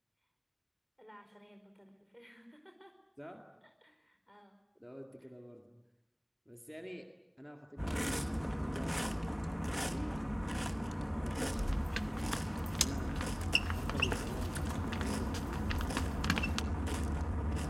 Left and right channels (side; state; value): both; identical; correlation 1.00